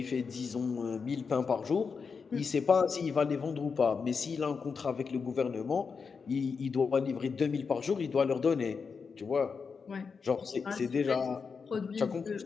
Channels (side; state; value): right; quieter; 5.4 dB